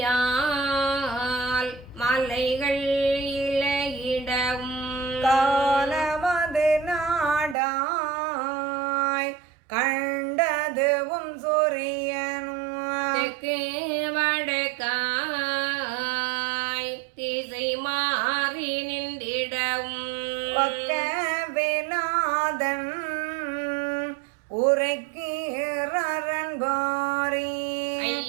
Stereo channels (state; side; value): drops out; left; at 7.6 s